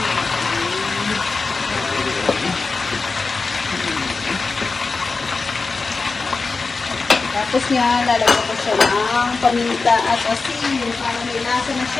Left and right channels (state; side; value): quieter; right; 4.2 dB